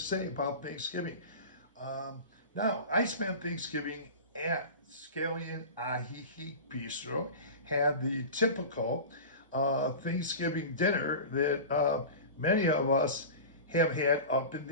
say about Thanksgiving. Um, Now, I spent Thanksgiving at Scallion Ajijic Bistro, had the typical Thanksgiving dinner that many of us have had up in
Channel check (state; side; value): inverted; both; correlation -0.31